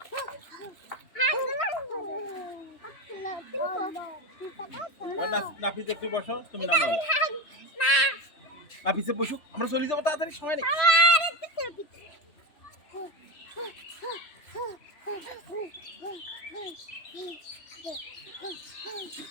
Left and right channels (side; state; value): right; late; 3.0 ms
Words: নাফিস একটু বসো তুমি নামো নাফিসে বসুক আমরা চলে যাবো তাড়াতাড়ি সময় নেই